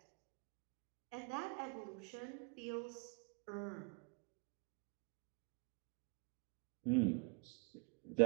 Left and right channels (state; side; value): quieter; left; 34.5 dB